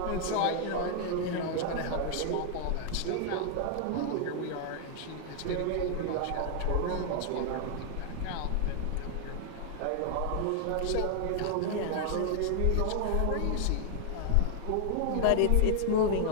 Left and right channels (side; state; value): both; different; correlation 0.00